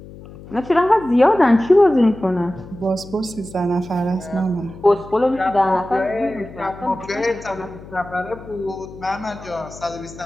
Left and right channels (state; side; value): noise; left; hum, 17 dB below the sound